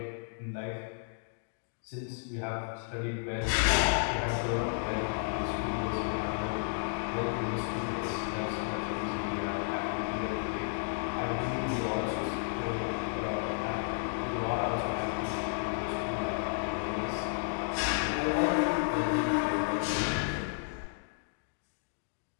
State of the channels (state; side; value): silent; right; digital silence